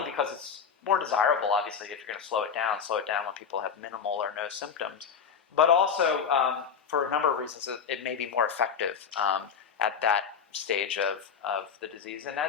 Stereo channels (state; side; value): quieter; right; 6.8 dB